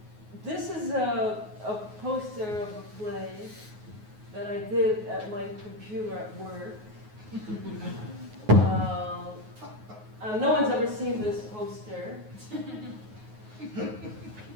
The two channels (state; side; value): late; left; 9.4 ms